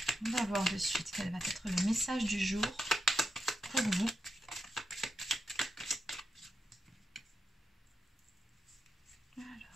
on va voir de suite quel va être le message du jour pour vous.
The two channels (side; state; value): both; normal; correlation 0.86